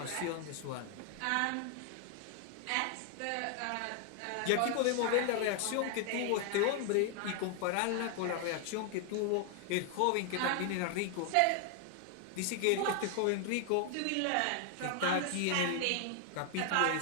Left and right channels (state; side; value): different; both; correlation 0.00